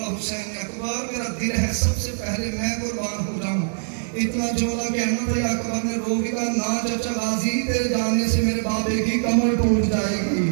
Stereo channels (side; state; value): left; silent; 63 dB below the other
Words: حسین نے اکبر میرا دل ہے سب سے پہلے میں قربان ہو جاؤں. اتنا جولا کہنا تھا. اکبر نے رو کے کہا نہ چچا غازی، تیرے جانے سے میرے بابے کی کمر ٹوٹ جائے گی،